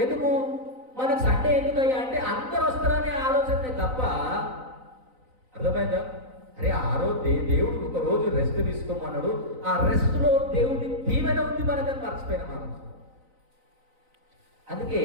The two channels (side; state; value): left; late; 3.9 ms